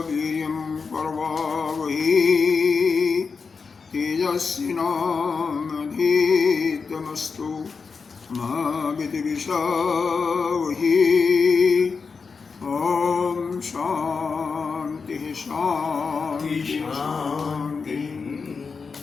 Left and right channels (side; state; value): right; quieter; 5.0 dB